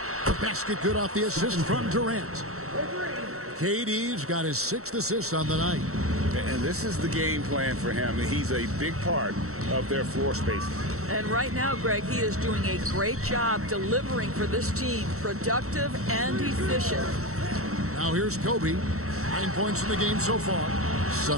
basket good off the assist from Durant. KD's got his 6th assist on the night. And this is the game plan for him. He's a big part of their floor spacing. And right now, Greg, he is doing a great job delivering for this team, productive and efficient. Now here's Kobe, 9 points in the game so far.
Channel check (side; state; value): left; late; 0.64 ms